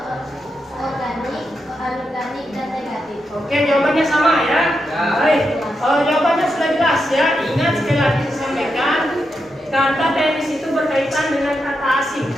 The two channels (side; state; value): both; normal; correlation 0.85